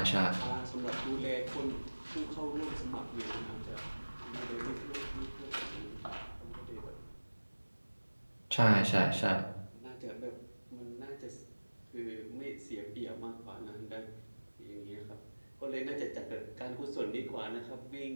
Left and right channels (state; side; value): inverted; both; correlation -1.00